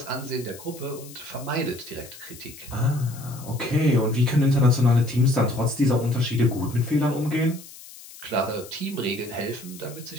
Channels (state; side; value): noise; left; hiss, 17 dB below the sound